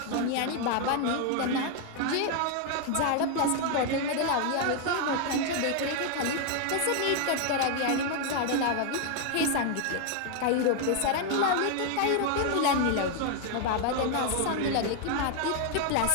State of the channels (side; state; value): both; different; correlation 0.00